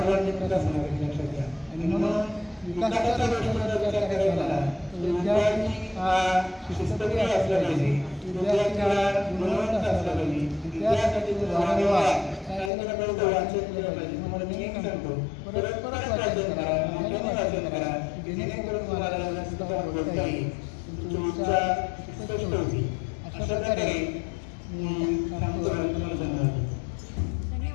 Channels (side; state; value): right; drops out; at 12.7 s